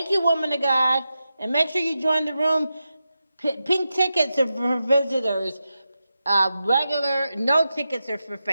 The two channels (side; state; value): both; inverted; correlation -0.90